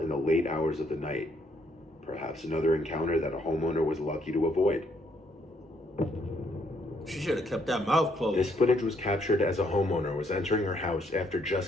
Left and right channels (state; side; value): normal; both; correlation 0.70